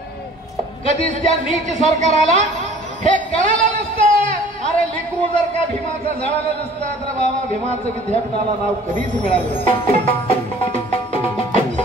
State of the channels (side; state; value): both; normal; correlation 0.50